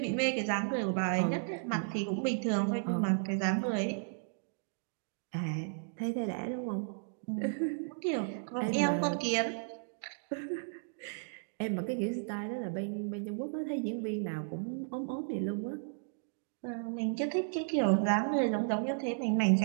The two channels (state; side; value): silent; left; digital silence